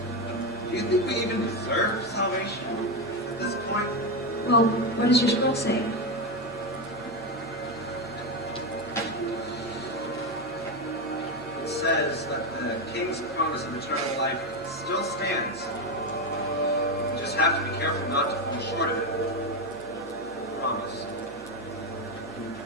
Do you think we even deserve salvation at this point? Well, what does your scroll say? It says that the king's promise of eternal life still stands. You just have to be careful not to fall short of it. Promise. He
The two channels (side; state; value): right; noise; hum, 23 dB below the sound